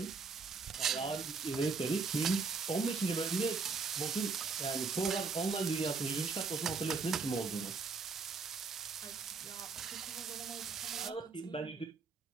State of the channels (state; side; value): quieter; left; 4.6 dB